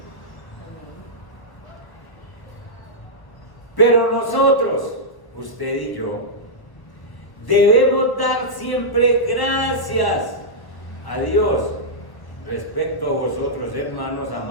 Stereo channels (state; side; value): late; right; 1.0 ms